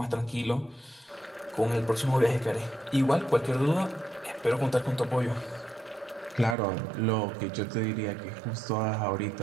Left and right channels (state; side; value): drops out; left; at 6.6 s